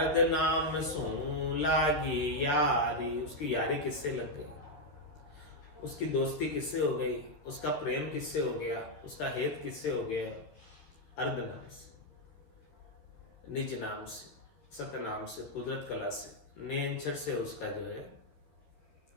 नाम सो लागी यारी। उसकी यारी किससे लग गई, उसकी दोस्ती किससे हो गई, उसका प्रेम किससे हो गया, उसका हेत किससे हो गया? अर्ध नाम से, निज नाम से, सतनाम से, कुदरत कला से, नेंचर से उसका जो है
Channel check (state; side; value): late; right; 13 ms